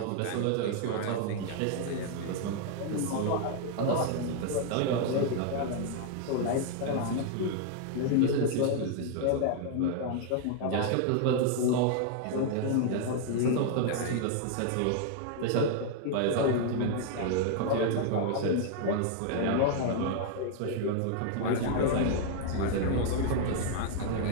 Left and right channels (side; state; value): both; different; correlation 0.00